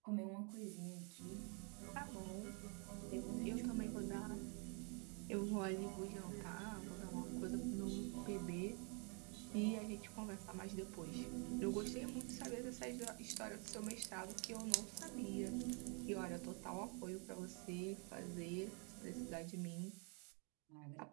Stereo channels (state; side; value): quieter; left; 35.8 dB